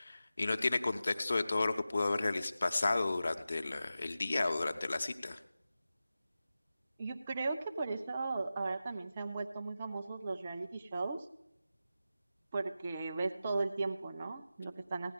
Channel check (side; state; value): both; inverted; correlation -0.93